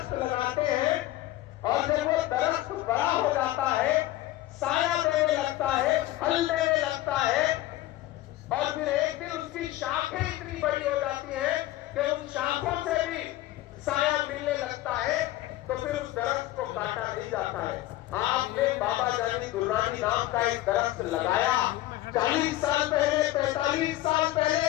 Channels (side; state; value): right; quieter; 15.8 dB